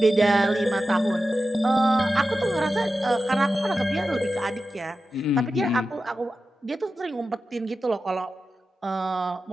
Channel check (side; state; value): both; normal; correlation 0.92